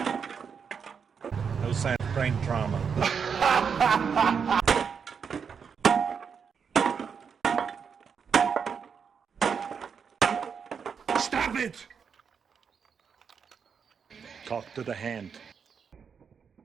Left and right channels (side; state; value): left; quieter; 6.5 dB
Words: No sign of brain trauma. Stop it! Talk to the hand.